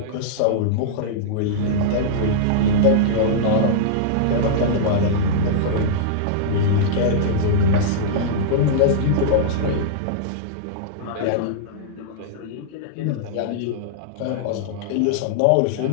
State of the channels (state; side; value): different; both; correlation -0.02